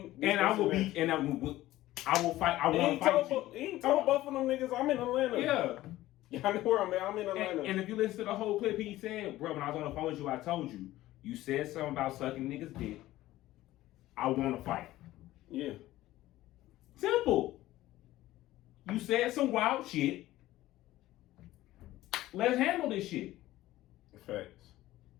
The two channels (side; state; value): right; quieter; 15.9 dB